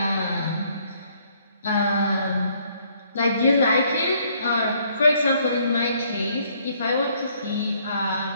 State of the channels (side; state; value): both; inverted; correlation -0.66